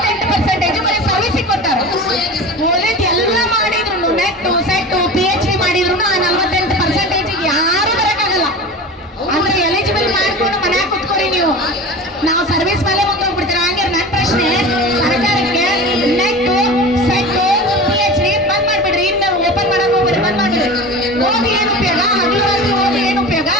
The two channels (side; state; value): both; normal; correlation 0.33